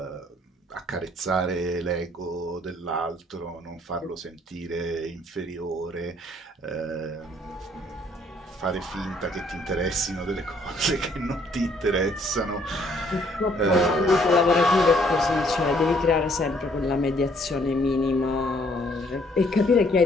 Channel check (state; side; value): normal; both; correlation 0.64